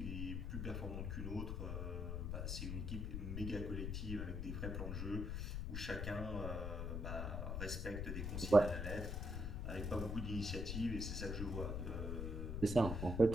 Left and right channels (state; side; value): noise; left; rumble, 2 dB below the sound